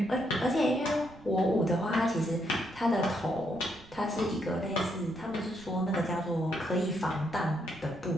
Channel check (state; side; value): noise; right; rumble, 21 dB below the sound